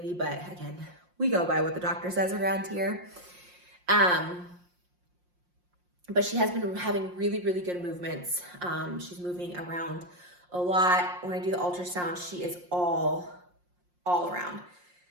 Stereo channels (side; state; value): left; late; 5.6 ms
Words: but again, we go by what the doctor says around here. But she has been having really, really good movements. She's moving around a lot. When I do the ultrasound, she is all around.